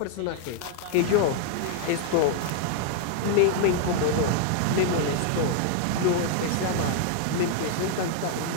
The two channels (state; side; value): different; both; correlation 0.00